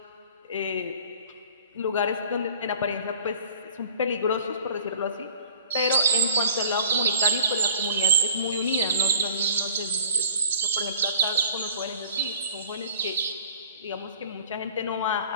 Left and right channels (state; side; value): inverted; both; correlation -0.47